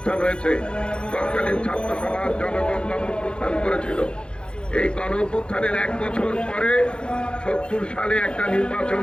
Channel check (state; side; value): late; right; 0.052 ms